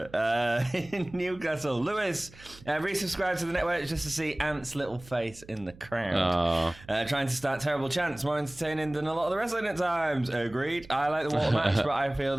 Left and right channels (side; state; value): right; noise; hum, 21 dB below the sound